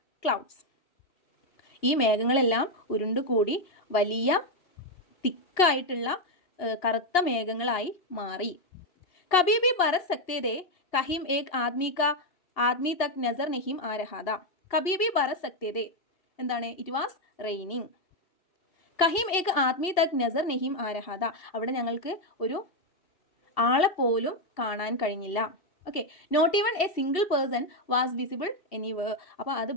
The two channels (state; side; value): late; right; 2.8 ms